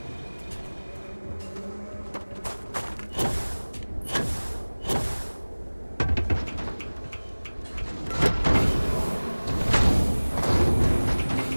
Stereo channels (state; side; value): inverted; both; correlation -1.00